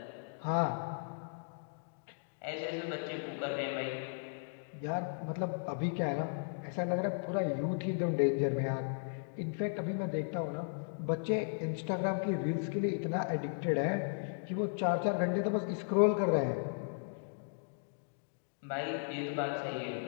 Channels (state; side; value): silent; right; digital silence